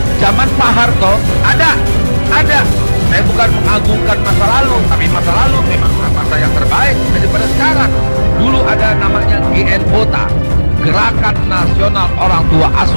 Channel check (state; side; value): inverted; both; correlation -1.00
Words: zaman Pak Harto ada. Saya bukan mengagungkan masa lalu, tapi masa lalu memang masa yang terbaik daripada sekarang. Dulu ada namanya GNOTA, Gerakan Nasional Orang Tua